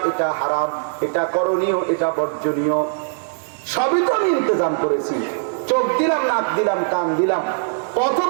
এটা হারাম, এটা করণীয়, এটা বর্জনীয়, সবই তো আমি ইন্তজাম করেছি। চোখ দিলাম, নাক দিলাম, কান দিলাম, পথ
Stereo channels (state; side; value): silent; left; 65 dB below the other